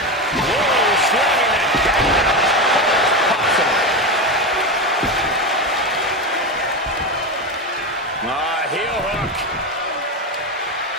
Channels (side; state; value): both; normal; correlation 0.17